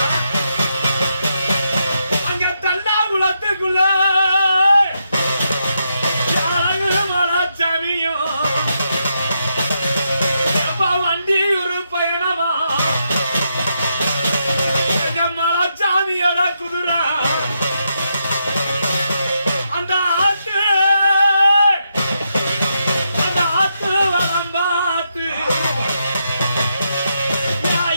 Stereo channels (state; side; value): inverted; both; correlation -0.82